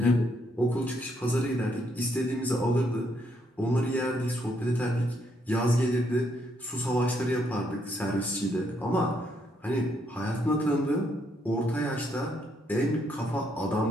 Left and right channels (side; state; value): both; normal; correlation 0.74